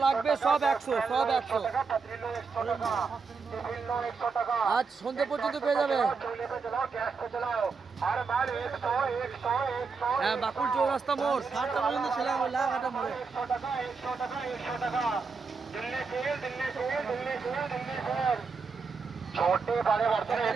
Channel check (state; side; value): quieter; left; 4.9 dB